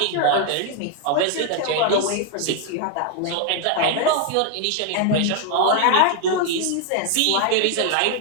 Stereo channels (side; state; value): both; different; correlation 0.00